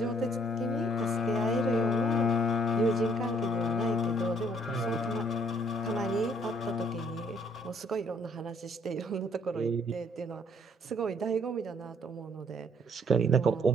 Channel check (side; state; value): both; normal; correlation 0.64